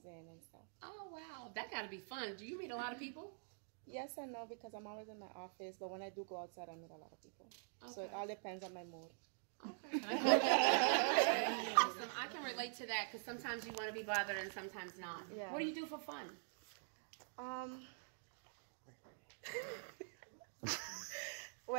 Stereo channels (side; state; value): left; silent; digital silence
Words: in and stuff. Oh, wow. That got to be fun. Do you meet a lot of people? Yes and no, because I'm always in my office, but when I do go outside, I meet a lot of people. So it all depends on my mood. Okay. Awesome. I can relate to that because sometimes you want to be bothered and sometimes not. Yeah. What do you do for fun?